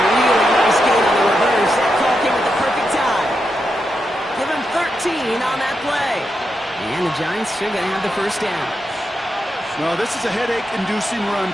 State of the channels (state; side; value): normal; both; correlation 0.85